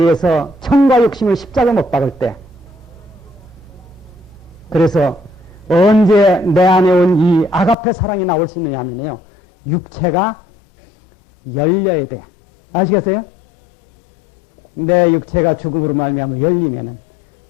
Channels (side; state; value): right; drops out; at 7.8 s